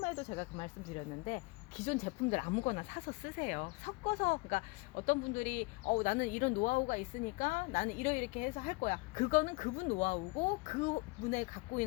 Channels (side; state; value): right; quieter; 25.9 dB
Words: 제가 그 말씀 드렸는데, 기존 제품들 아무거나 사서 쓰세요. 섞어서. 그러니까 어떤 분들이 나는 이런 노하우가 있으니까 나는 이렇게 해서 할 거야. 그거는 그분 노하우고 그분의 갖고